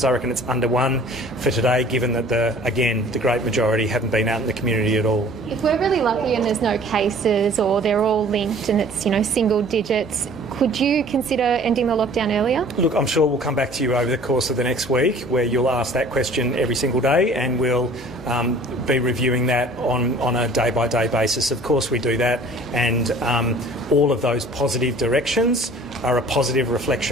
I reckon it's under 1 for today, given that, the great majority haven't been out in the community at all. If we're really lucky and there's no cases, or they're all linked and it's, single digits, could you consider ending the lockdown earlier? Look, I'm sure we'll come back to you over the course of the next week, where you'll ask that question every single day, and we'll be reviewing that on a day-by-day basis. Of course we do that, and all of those positive directions are a positive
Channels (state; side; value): normal; both; correlation 0.50